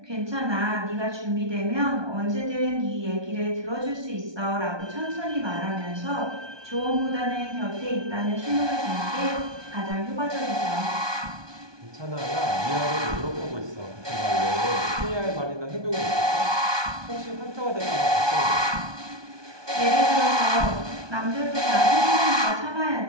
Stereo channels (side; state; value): left; late; 1.2 ms